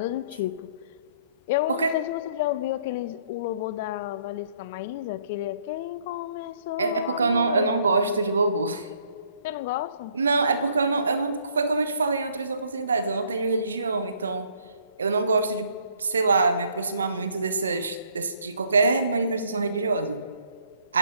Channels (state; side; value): inverted; both; correlation -0.65